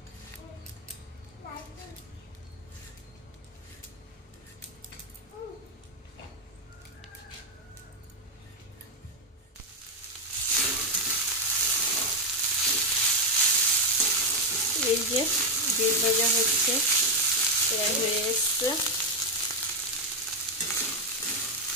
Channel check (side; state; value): both; normal; correlation 0.04